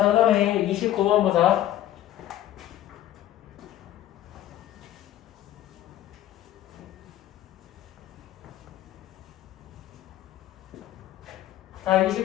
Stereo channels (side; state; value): right; quieter; 13.0 dB